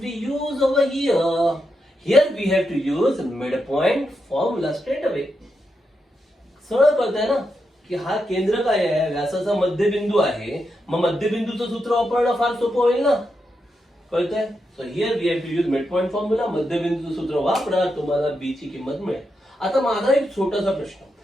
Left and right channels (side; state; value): both; normal; correlation 0.85